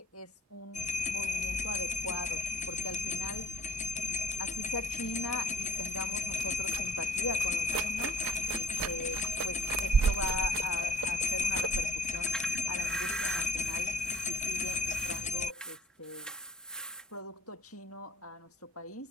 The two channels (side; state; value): both; normal; correlation 0.51